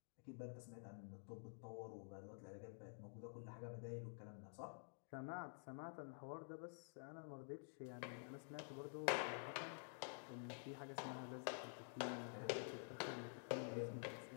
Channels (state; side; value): silent; right; digital silence